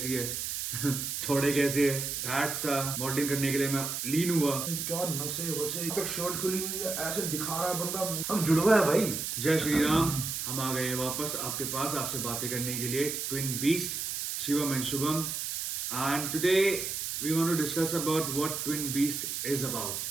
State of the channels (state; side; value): noise; right; hiss, 3 dB below the sound